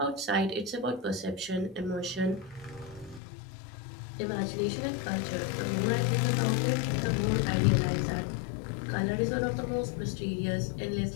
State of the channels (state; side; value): drops out; right; at 3.2 s